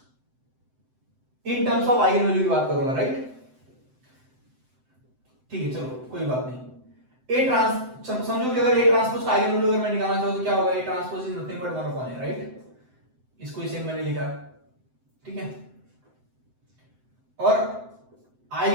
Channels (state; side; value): late; left; 7.8 ms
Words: in terms of eigen value की बात करूंगा, राइट, ठीक है। चलो कोई बात नहीं। ए ट्रांस समझो कि अगर ए ट्रांसपोज का आइगन वैल्यू अगर मैं निकालना चाहूं तो क्या होगा, A transpose is nothing but 1 upon A, right, इसको इसे मैंने लिखा, ठीक है। और